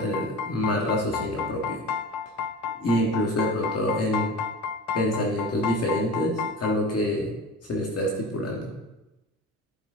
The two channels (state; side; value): normal; both; correlation 0.33